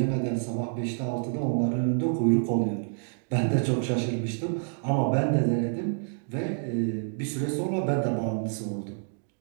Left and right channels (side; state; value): left; silent; digital silence